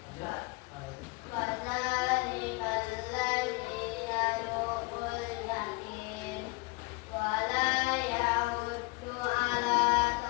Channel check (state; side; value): quieter; right; 26.5 dB